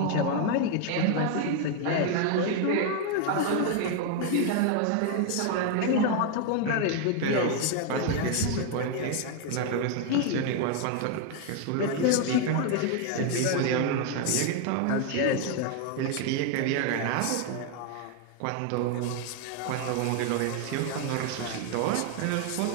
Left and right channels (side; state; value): both; different; correlation 0.01